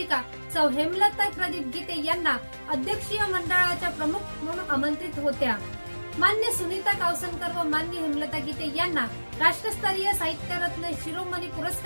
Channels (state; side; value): inverted; both; correlation -1.00